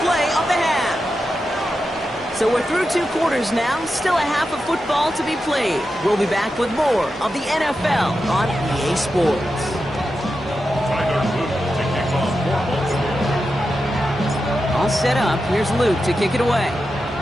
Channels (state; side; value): normal; both; correlation 0.89